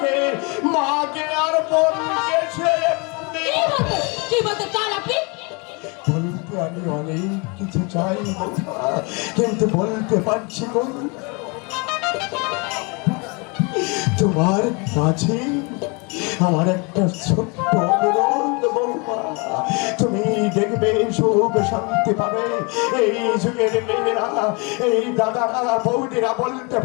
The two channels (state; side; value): quieter; right; 30.7 dB